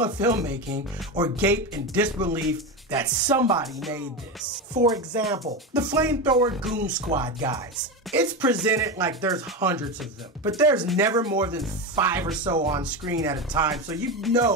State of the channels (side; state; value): both; normal; correlation 0.18